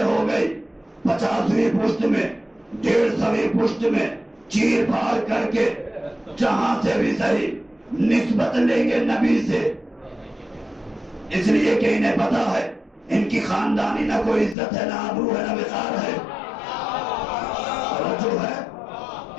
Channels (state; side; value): drops out; right; at 14.6 s